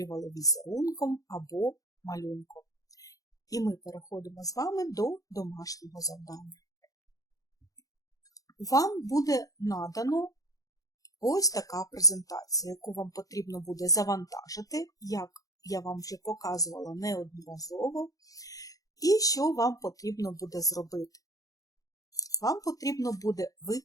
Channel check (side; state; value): right; late; 0.17 ms